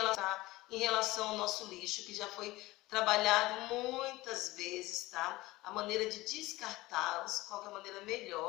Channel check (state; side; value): quieter; right; 19.4 dB